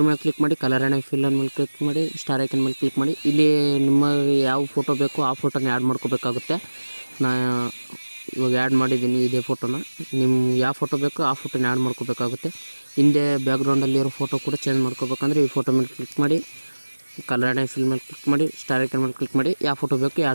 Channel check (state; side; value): inverted; both; correlation -1.00